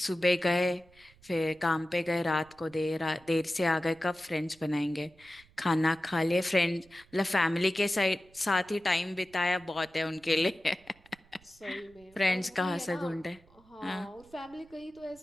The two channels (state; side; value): noise; right; rumble, 28 dB below the sound